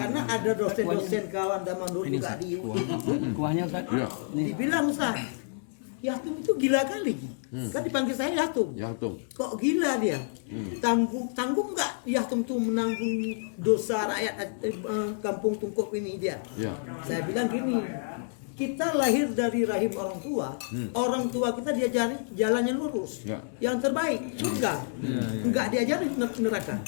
ada dosen-dosen kawan zaman dulu juga di kuahnya Ustaz. Iya. dibilang Ustaz, Yatum itu gila kali. Kan dipanggil saya Yatum. Ya tuh. Kok gila dia? Tanggung nggak Yatum tuh menanggung dosa rakyat kampung Tungkuk ini dia? Ya. Saya bilang gini, kita lahir dari rahim orang tua kita diajari jalannya lurus, Ya. yang terbaik surga, nggak diajari neraka.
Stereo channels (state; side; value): silent; right; digital silence